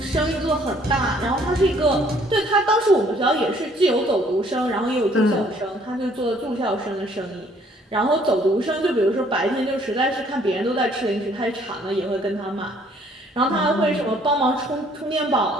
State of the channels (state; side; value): normal; both; correlation 0.61